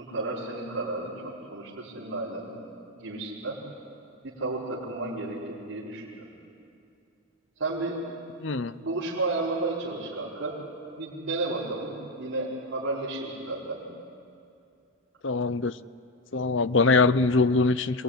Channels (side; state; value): both; normal; correlation 0.10